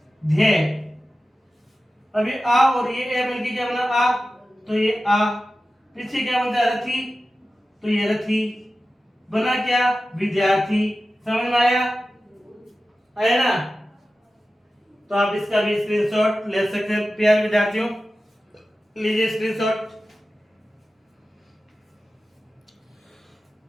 ध्य। अभी आ और ये ए मिलके क्या बना? आ। तो ये आ। पीछे क्या बनता है? रथी। तो ये रथी बना। क्या? विद्यार्थी। समझ में आया? आया ना? तो आप इसका भी स्क्रीनशॉट ले सकते हैं प्यारे विद्यार्थियों। लीजिए स्क्रीनशॉट।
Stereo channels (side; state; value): both; normal; correlation 0.94